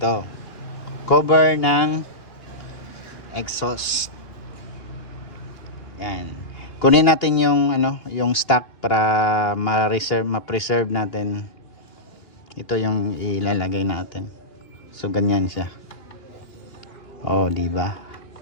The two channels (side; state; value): right; late; 2.9 ms